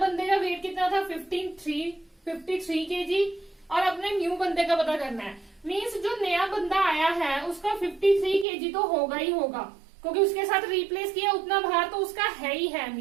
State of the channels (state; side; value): drops out; left; at 8.5 s